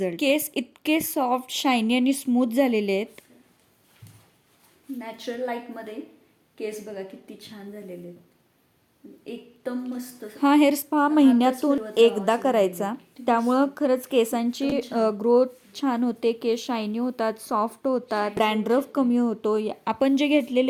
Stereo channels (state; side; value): identical; both; correlation 1.00